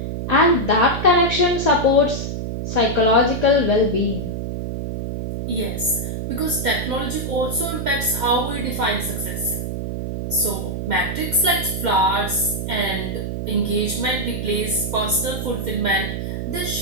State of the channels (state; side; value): noise; right; hum, 4 dB below the sound